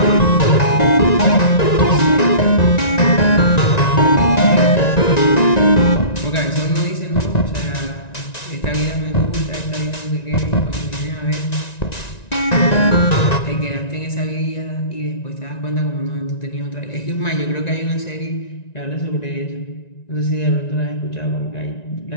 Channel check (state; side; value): late; right; 1.9 ms